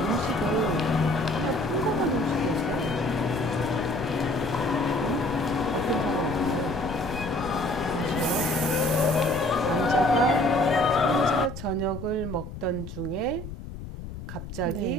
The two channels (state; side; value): noise; left; rumble, 10 dB below the sound